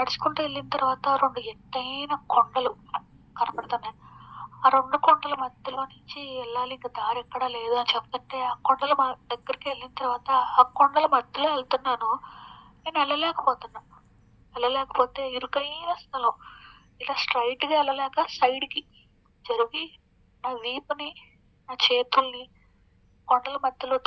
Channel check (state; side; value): identical; both; correlation 1.00